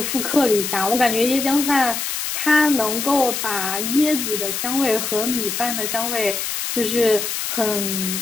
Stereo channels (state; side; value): noise; left; hiss, 3 dB below the sound